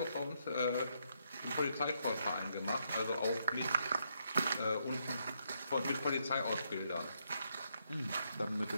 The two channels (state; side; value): inverted; both; correlation -0.77